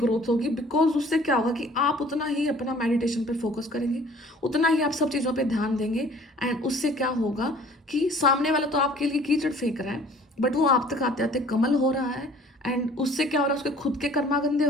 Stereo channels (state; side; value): normal; both; correlation 0.52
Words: होगी, बिकॉज उससे क्या होगा कि आप उतना ही अपना मेडिटेशन पे फोकस करेंगे, उतना ही आप सब चीज़ों पे ध्यान देंगे। एंड उससे क्या होगा कि सामने वाला तो आपके लिए कीचड़ फेंक रहा है बट वो आप तक आते आते कमल हो रहा है। एंड उससे क्या हो रहा है, उसके खुद के कर्मा गंदे